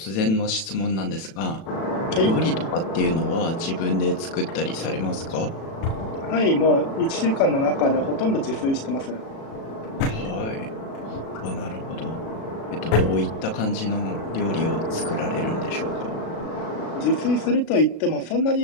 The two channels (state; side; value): late; right; 36 ms